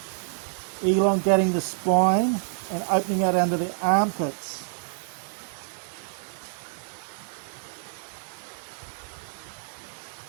elongating the spine, and opening out under the armpits.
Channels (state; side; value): silent; left; digital silence